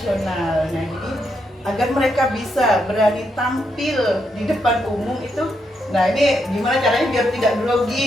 Nah jadi agar mereka bisa berani tampil di depan umum itu, nah ini gimana caranya biar tidak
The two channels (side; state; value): both; normal; correlation 0.80